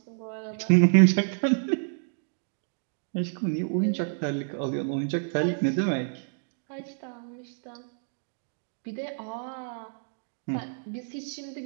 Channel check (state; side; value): silent; left; digital silence